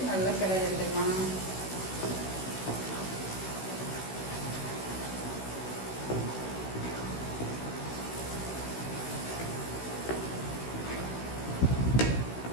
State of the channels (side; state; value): right; late; 16 ms